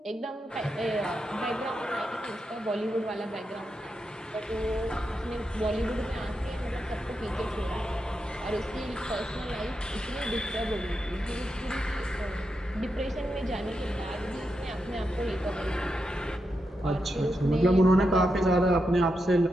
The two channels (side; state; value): both; normal; correlation 0.86